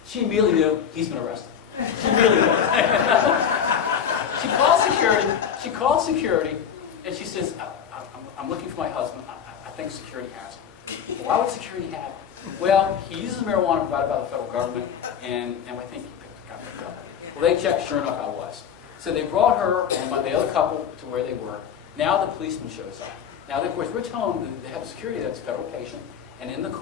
She immediately knew he's been arrested. She immediately knew. She calls security, and she says, I'm looking for my husband. I think security has him. Why would security have him? Well, he uses marijuana provided by the federal government, and I think he picked the guy up. Well, they checked, sure enough, I was. So they brought her and the other couple to where they were. Now the policeman shows up. Now, of course, we're telling them they have a security that's a federal patient, and in the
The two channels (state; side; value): quieter; right; 8.0 dB